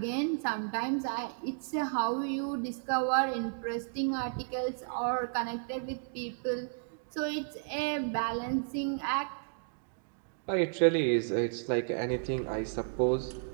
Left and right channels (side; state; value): left; silent; digital silence